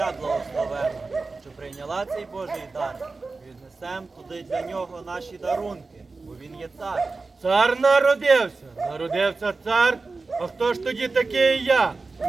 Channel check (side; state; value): left; quieter; 3.9 dB